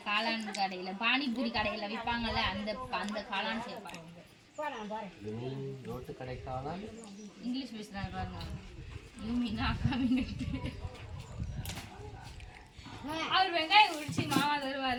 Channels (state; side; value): identical; both; correlation 1.00